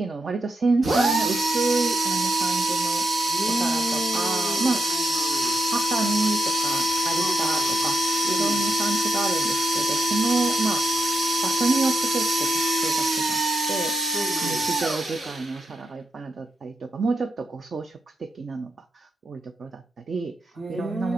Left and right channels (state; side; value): normal; both; correlation 0.84